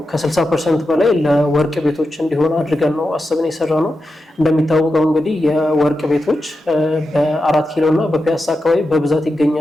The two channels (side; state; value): both; normal; correlation 0.89